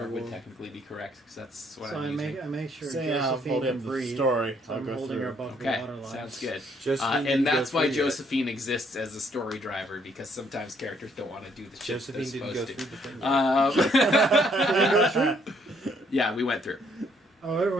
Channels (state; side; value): normal; both; correlation 0.68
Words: would technically be correct, because that's what So I'm I using. make sure saying how I'm Josephine holding can up the breathe. story, So I'll I'm go holding her through. above the Okay, water line. sounds good. Josephine didn't And go that's why through yet. Josephine exists as a story driver, because sometimes characters don't want to do the shit they're Josephine didn't go supposed through to. the thing. Yeah, we went through. Oh,